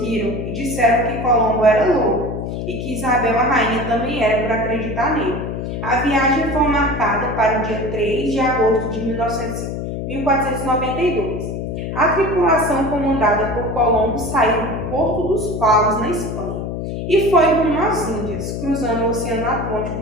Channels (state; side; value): noise; left; hum, 5 dB below the sound